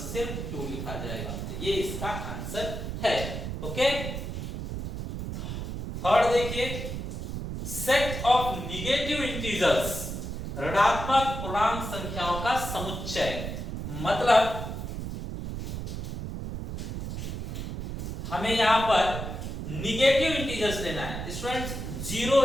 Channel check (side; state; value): right; noise; rumble, 5 dB below the sound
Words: सिर्फ 2 लिखा जाएगा। तो ये इसका आंसर है। ओके, थर्ड देखिए, सेट ऑफ निगेटिव इंटीजर्स, ऋणात्मक पूर्णांक संख्याओं का समुच्चय। मतलब हमें यहां पर निगेटिव इंटीजर्स लेना है स्टूडेंट्स। जीरो